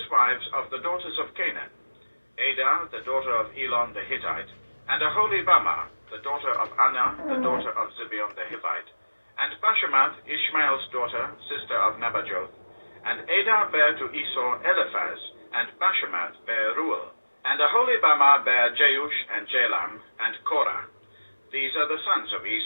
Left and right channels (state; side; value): inverted; both; correlation -1.00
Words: wives of the daughters of Canaan, Adah, the daughter of Elon the Hittite, and Aholibamah, the daughter of Anah, the daughter of Zibeon the Hivite, and Bashemath, Ishmael's daughter, sister of Nebajoth. And Adah bare to Esau Eliphaz, and Bashemath bare Reuel, and Aholibamah bare Jeush and Jalam, and Korah. These are the sons of